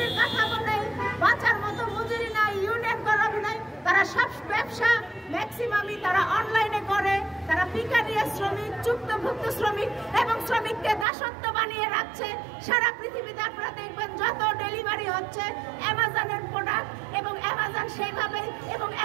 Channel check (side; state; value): left; drops out; at 11.1 s